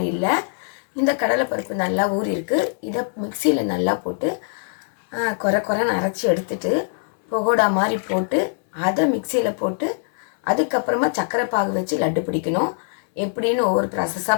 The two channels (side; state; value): right; silent; 64 dB below the other